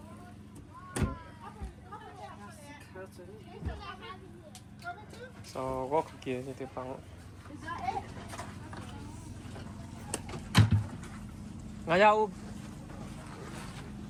so có kia như thế bằng ngay nhau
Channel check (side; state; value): both; identical; correlation 1.00